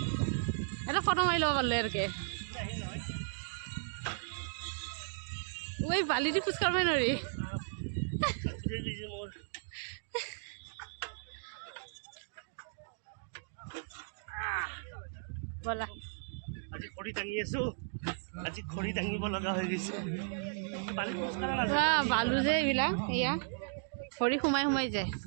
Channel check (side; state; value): left; silent; digital silence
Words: এটা ফটো মাৰি ল'ব পাৰলে আৰুকে ঐ বালি দি খোজ কাঢ়িব নোৱাৰি ব'লা আজি খৰি দাঙি আছোঁ আজি খৰি দাঙিব লগা হৈ গৈছে পানী খোজ কঢ়া নাযায় বালু যে এইবিলাক এয়া ভৰি সোমাই সোমাই যায়